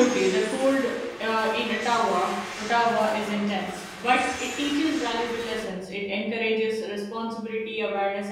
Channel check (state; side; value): identical; both; correlation 1.00